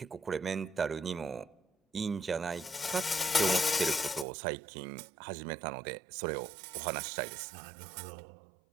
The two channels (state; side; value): drops out; left; at 4.2 s